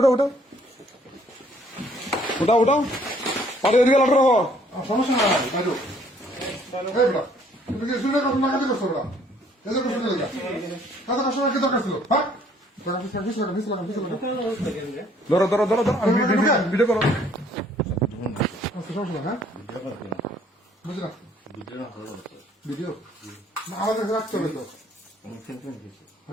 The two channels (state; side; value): normal; both; correlation 0.61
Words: উঠো উঠাও উঠাও পাটি দিয়ে আলাদা রাখো সমস্যা নাই বাইরো এই বড় তুমি কি শুনে কথা না কাজে করছো বড় এজে করছো না কাজে কাস্টমার কি দরকার ছিল হ্যাঁ ধরো ধরো ধরো ধরো ভিডিও করো সমস্যা হ্যাঁ বুঝলা ভিডিও না আমাদের রাখতে হবে তো